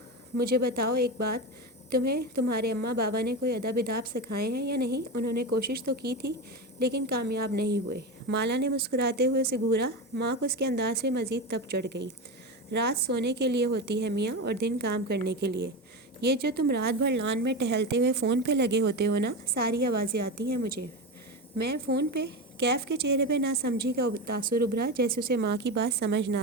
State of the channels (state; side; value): normal; both; correlation 0.19